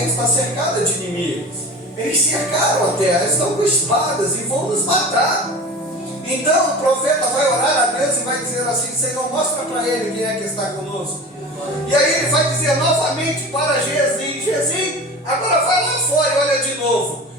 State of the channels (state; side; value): normal; both; correlation 0.35